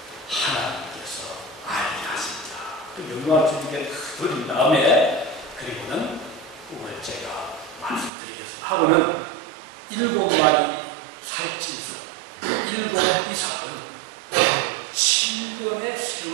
하나님께서 알게 하십니다. 또 영광을 주님께 드린 다음에 그리고는 꿈을 제가 말씀드리겠습니다. 하고는 7마리 살찐소, 7 이삭은 7년의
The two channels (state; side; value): drops out; left; at 8.1 s